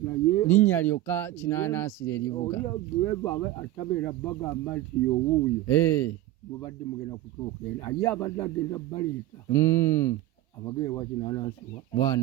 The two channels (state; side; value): quieter; left; 15.0 dB